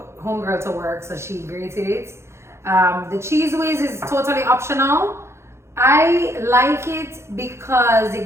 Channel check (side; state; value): left; late; 0.13 ms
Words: homegirl to work, so she grated it. The cheese whiz is totally optional. I like it because